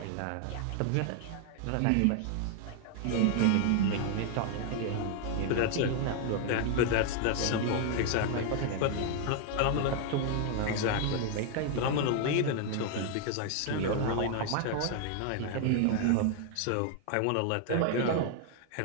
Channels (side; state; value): both; different; correlation 0.00